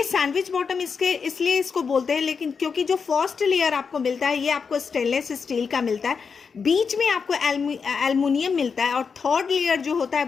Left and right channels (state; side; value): quieter; right; 5.7 dB